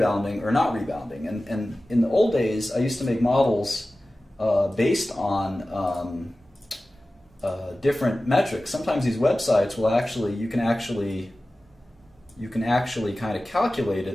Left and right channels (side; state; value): both; normal; correlation 0.96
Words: or not rebounding. And in the old days, I used to make models based on different metrics. Sometimes these websites will you can actually kind of calculate